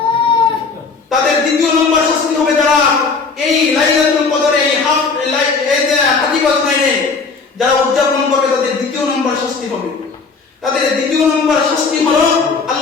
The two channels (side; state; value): right; quieter; 4.6 dB